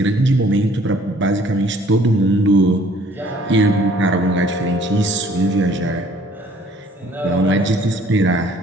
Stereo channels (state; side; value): normal; both; correlation 0.57